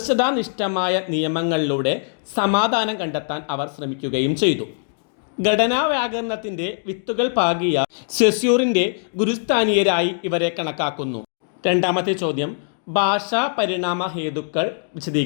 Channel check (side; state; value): right; silent; digital silence